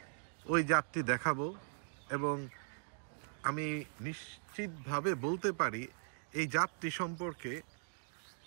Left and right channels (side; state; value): left; silent; digital silence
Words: ওই জাতটি দেখাবো, এবং আমি নিশ্চিতভাবে বলতে পারি এই জাতটি সম্পর্কে